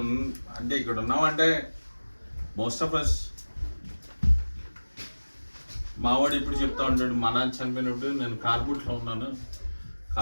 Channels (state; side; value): inverted; both; correlation -1.00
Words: ఉన్నామంటే మోస్ట్ ఆఫ్ అస్, మావాడు ఇప్పుడు చెప్తా ఉంటాడు, మా నాన్న చనిపోయినప్పుడు నేను కార్బూట్లో ఉన్నాను,